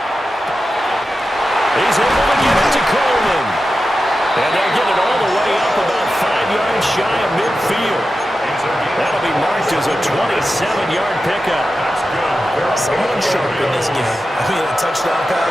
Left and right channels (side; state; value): both; normal; correlation 0.92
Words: He's able to get it to Coleman. And they'll get it all the way up about 5 yards shy of midfield. That'll be marked as a 27-yard pickup. Someone sharp in this game. I mean, a touchdown